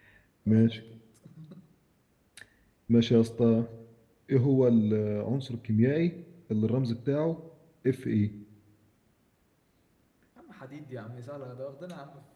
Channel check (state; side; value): identical; both; correlation 1.00